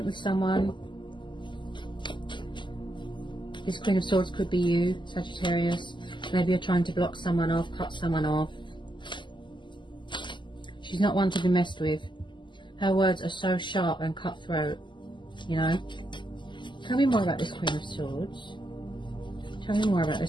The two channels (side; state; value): right; late; 0.23 ms